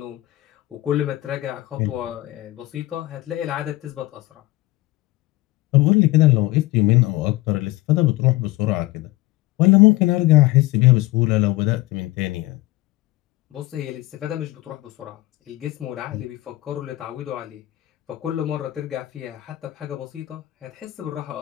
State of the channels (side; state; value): right; quieter; 18.5 dB